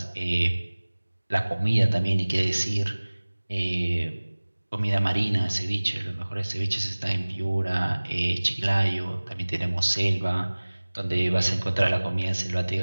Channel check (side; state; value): both; inverted; correlation -1.00